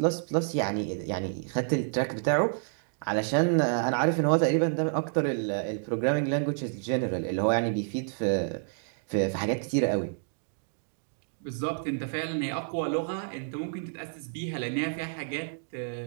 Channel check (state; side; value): silent; left; digital silence